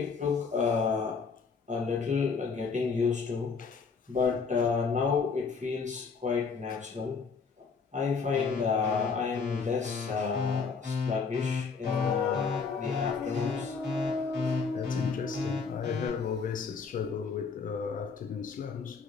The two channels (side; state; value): right; quieter; 5.2 dB